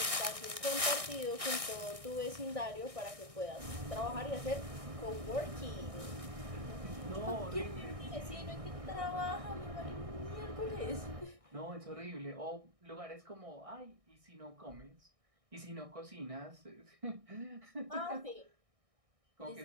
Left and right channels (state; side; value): late; left; 1.6 ms